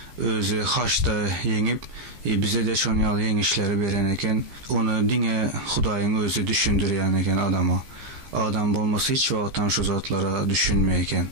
özü haçta yengip bize de şunun yalı yengişleri veren eken. Onu dine Hudayın özü düşündürüyen eken adama. Adam olması hiç vaqtdan şu zatlara düşünmeyken.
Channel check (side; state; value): left; late; 15 ms